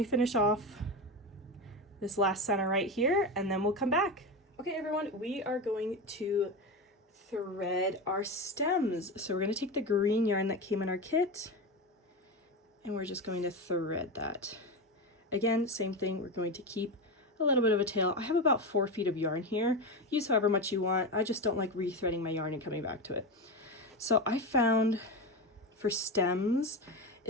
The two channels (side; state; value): both; normal; correlation 0.19